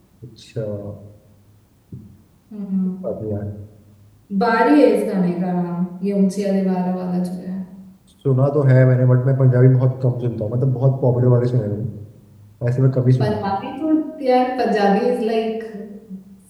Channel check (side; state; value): both; identical; correlation 1.00